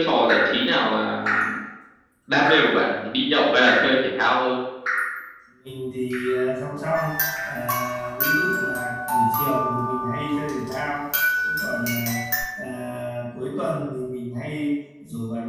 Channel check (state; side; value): identical; both; correlation 1.00